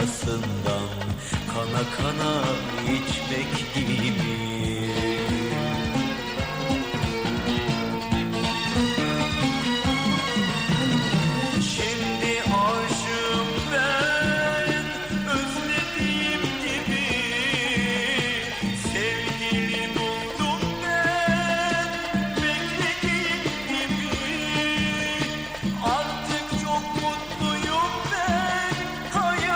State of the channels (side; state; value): right; noise; rumble, 23 dB below the sound